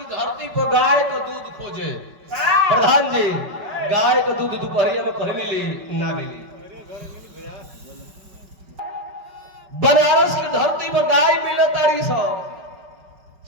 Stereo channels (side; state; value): left; late; 5.3 ms